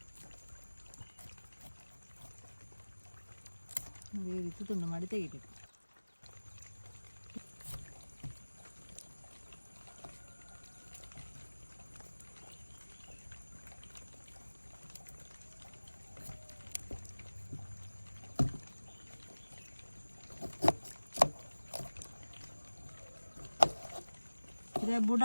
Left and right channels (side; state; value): both; inverted; correlation -1.00